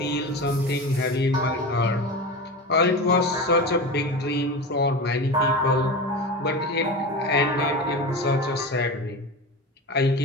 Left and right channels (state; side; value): normal; both; correlation 0.26